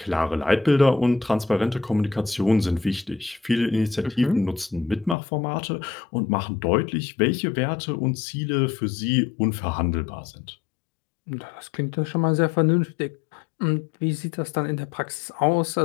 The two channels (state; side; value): drops out; right; at 5.2 s